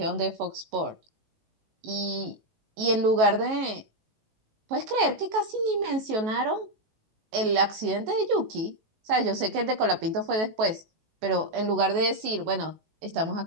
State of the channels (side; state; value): left; late; 18 ms